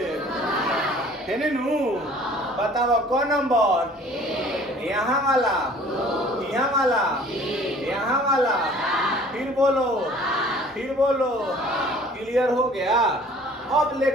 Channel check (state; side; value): normal; both; correlation 0.51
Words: है नू? बताओ कौन नंबर? यहाँ वाला, यहाँ वाला, यहाँ वाला। फिर बोलो, फिर बोलो। क्लियर हो गया? अब